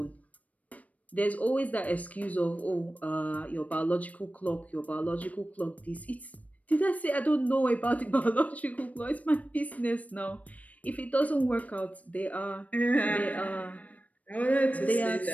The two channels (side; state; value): right; late; 0.070 ms